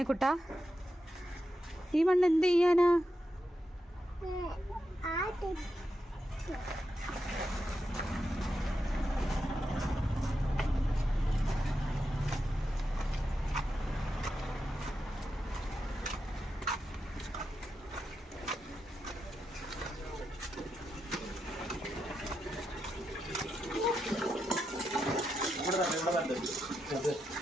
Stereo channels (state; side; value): normal; both; correlation 0.86